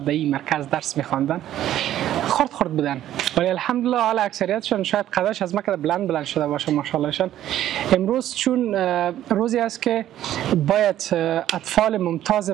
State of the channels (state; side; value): quieter; left; 12.4 dB